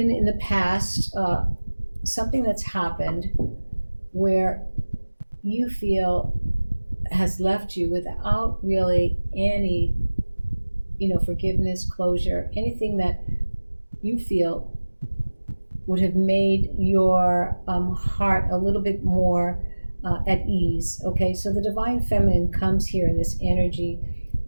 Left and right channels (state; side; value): inverted; both; correlation -1.00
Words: in the past something that's happened where you feel has left you without really any, forgiveness, closure, anything that you feel would have made your heart a little bit more at ease. Okay, so the divine feminine comes here in this energy